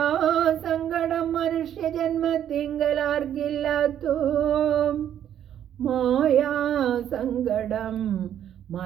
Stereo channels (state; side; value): quieter; left; 10.2 dB